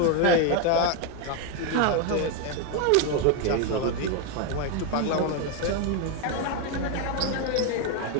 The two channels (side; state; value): both; different; correlation 0.02